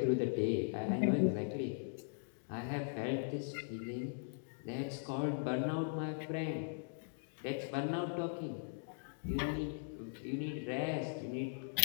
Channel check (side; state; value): right; silent; digital silence